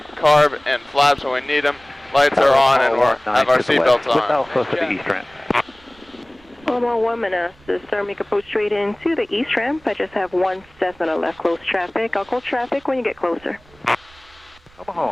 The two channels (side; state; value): right; noise; rumble, 28 dB below the sound